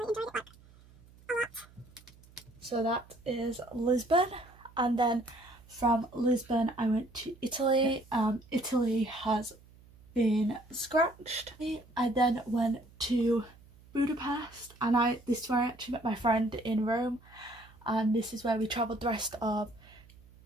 it, like a lot. So that is Lisbon, and then from Lisbon I went to Italy. Italy has been scratched. I then went to Budapest, and this is where I actually met my friend in Rome, and this is where we travelled the rest of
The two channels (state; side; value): noise; right; hum, 25 dB below the sound